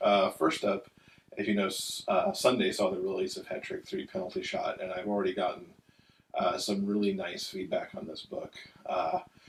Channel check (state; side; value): identical; both; correlation 1.00